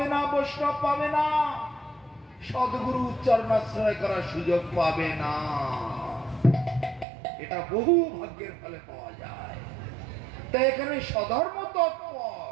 না, বৈষ্ণব পাবে না। সদ্গুরু চরণাশ্রয় করার সুযোগ পাবে না। এটা বহু ভাগ্যের ফলে পাওয়া যায়। তাই এখানে স্বধর্ম তৎপর,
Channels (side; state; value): left; drops out; at 7.1 s